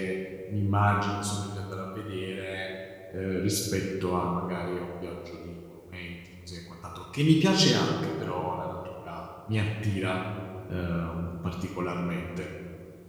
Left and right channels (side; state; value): both; identical; correlation 1.00